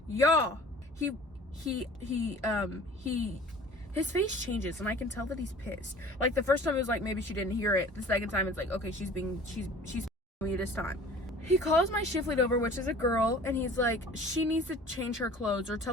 Y'all, his face changes and I can tell that he's pissed. Like the first time it was like maybe she didn't hear it. The second time it's like, okay, she's me this time. He calls my shift lead over, which is a girl, and he's like, she needs to change her clothes, or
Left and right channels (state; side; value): normal; both; correlation 0.46